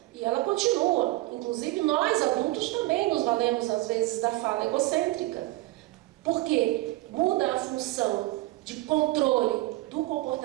e ela continua. Inclusive, nós adultos também nos valemos, às vezes, da fala egocêntrica. Por quê? Muda a função de controle do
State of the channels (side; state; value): left; quieter; 19.0 dB